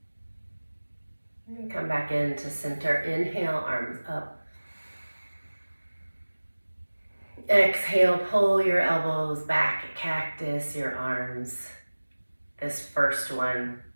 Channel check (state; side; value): inverted; both; correlation -1.00